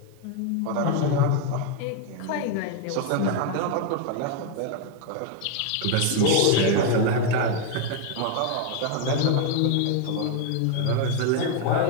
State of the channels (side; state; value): both; different; correlation 0.01